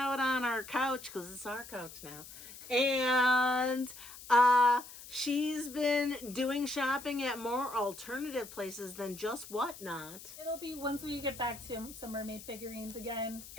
on our couch because it's our couch now. And she's been doing shopping at more alternative places than just Whatnot. It'll be once we get back to some mermaid figurines again.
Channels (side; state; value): left; noise; hiss, 15 dB below the sound